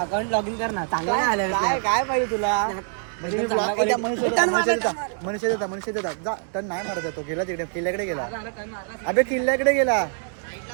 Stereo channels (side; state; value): left; silent; 62 dB below the other